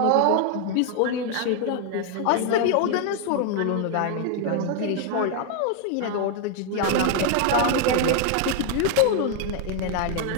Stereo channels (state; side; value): different; both; correlation 0.00